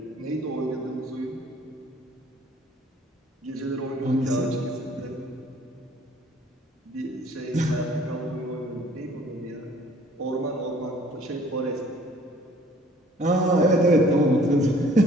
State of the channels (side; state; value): both; normal; correlation 0.56